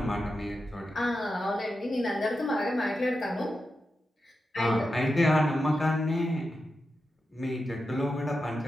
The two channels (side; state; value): both; normal; correlation 0.89